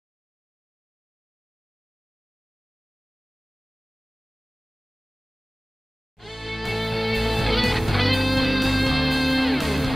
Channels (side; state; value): both; normal; correlation 0.98